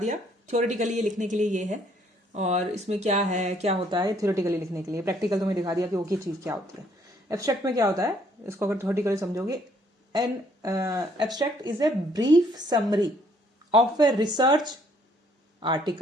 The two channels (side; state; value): both; normal; correlation 0.66